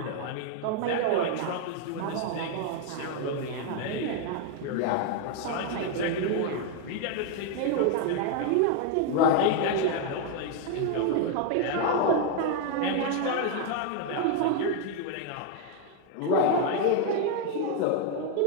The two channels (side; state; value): both; different; correlation 0.01